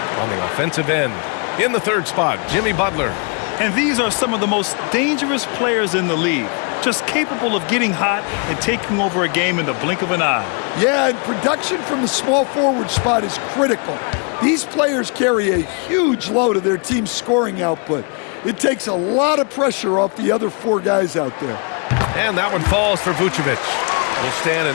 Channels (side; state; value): right; quieter; 37.1 dB